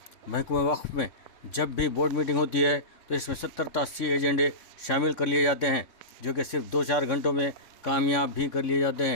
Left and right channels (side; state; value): right; late; 3.7 ms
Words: محکمہ وقف میں جب بھی بورڈ میٹنگ ہوتی ہے تو اس میں 70 تا 80 ایجنڈے شامل کر لیے جاتے ہیں جو کہ صرف 2-4 گھنٹوں میں کامیاب بھی کر لیے جاتے